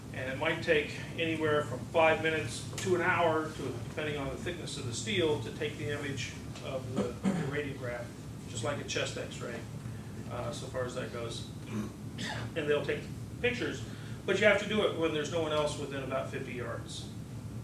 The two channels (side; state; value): both; identical; correlation 1.00